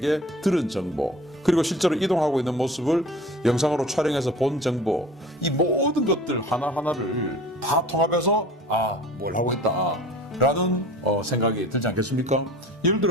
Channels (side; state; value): both; normal; correlation 0.43